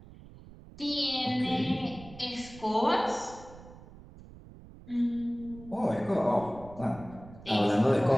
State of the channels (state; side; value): noise; right; rumble, 18 dB below the sound